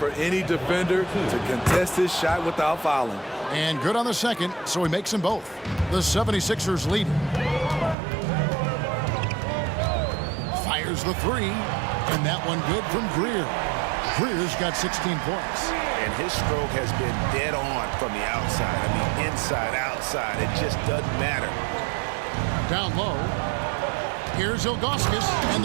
any defender to contest his shot without fouling. And good on the second, so he makes them both. The 76ers lead. Fires the 3, and that one good from Greer. Greer's got 16 points. And his stroke has been dead on from the outside. I mean, inside, outside. It just doesn't matter. Down low. Here's Ilgauskas, and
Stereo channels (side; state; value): left; drops out; at 8.0 s